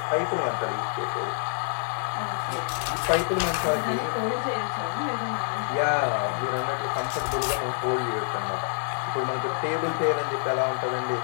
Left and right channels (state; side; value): silent; right; digital silence